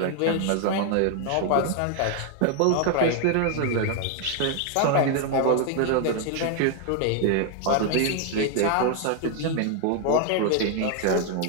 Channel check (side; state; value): both; different; correlation 0.00